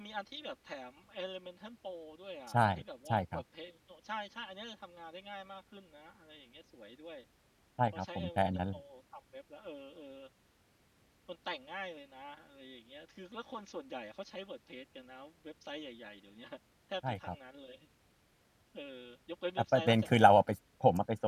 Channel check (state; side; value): identical; both; correlation 1.00